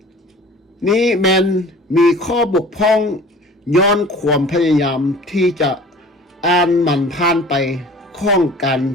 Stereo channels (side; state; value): both; normal; correlation 0.45